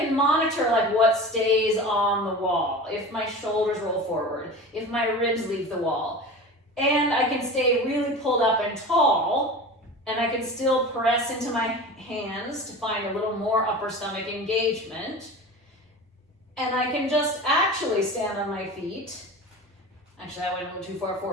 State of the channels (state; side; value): normal; both; correlation 0.33